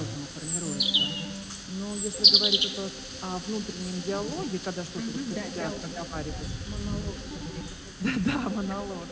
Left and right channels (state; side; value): identical; both; correlation 1.00